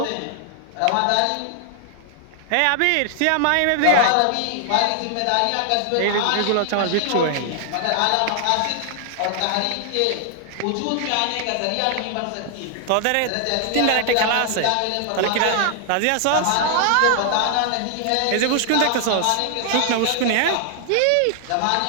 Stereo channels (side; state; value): both; different; correlation 0.00